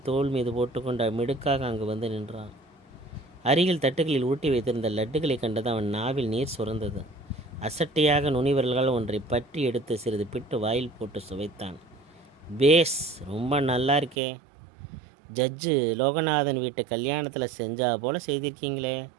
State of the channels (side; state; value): left; drops out; at 14.2 s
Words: தோல் மீது போட்டுக்கொண்டு மிடுக்காக அங்கு வந்து நின்றான். அருகில் தட்டுகளில் ஊட்டி வைத்திருந்த லட்டுகளை கண்டது அவன் நாவில் நீர் சுரந்தது. அசட்டையாக நுனிவர்களால் ஒன்றை பற்றி எடுத்து சிறிது பிட்டு வாயில் போட்டு சுவைத்தான். பேஸ், ரொம்ப நல்லா இருக்கே. ஜட்ஜு லோகநாதன் வீட்டு கல்யாணத்தில் செஞ்சா போல செய்திருக்கீங்களே